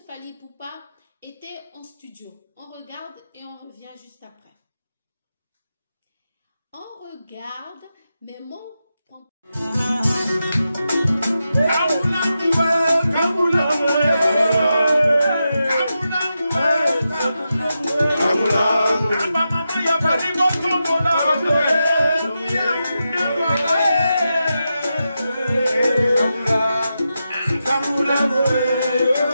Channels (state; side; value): inverted; both; correlation -0.89